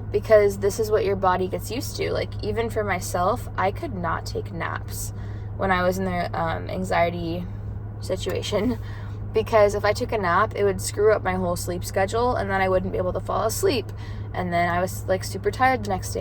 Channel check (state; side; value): identical; both; correlation 1.00